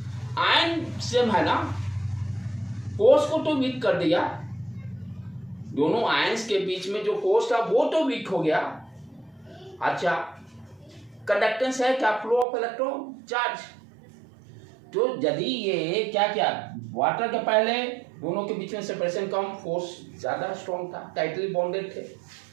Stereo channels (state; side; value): drops out; left; at 12.5 s